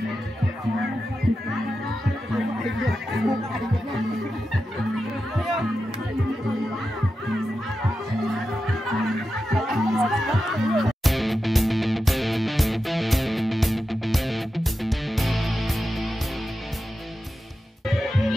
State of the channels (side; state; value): both; normal; correlation 0.91